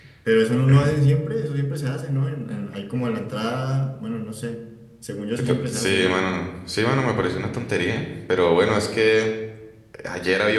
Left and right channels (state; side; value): identical; both; correlation 1.00